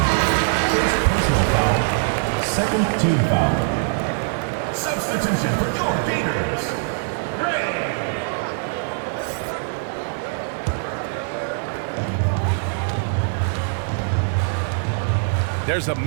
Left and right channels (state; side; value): silent; left; digital silence